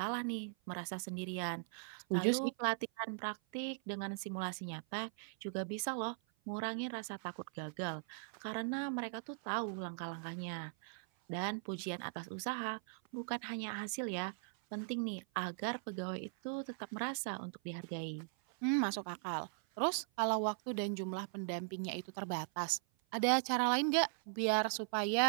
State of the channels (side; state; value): left; silent; 51 dB below the other